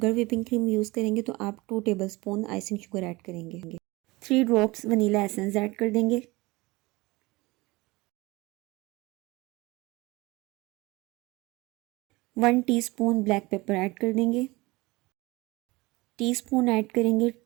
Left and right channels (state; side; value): quieter; left; 22.2 dB